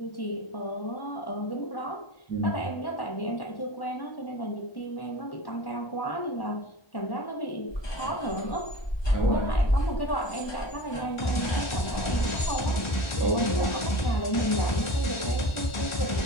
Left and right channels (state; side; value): late; right; 1.4 ms